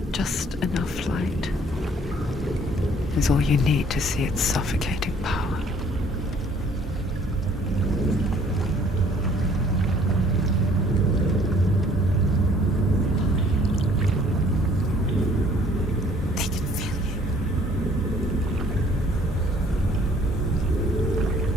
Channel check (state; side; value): normal; both; correlation 0.58